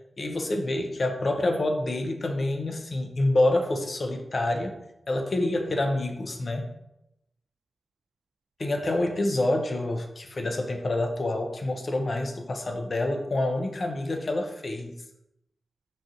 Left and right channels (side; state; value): both; normal; correlation 0.94